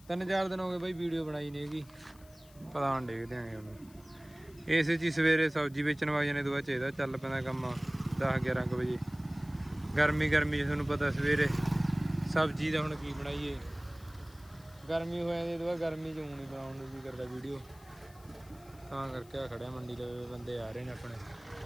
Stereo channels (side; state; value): left; noise; hiss, 26 dB below the sound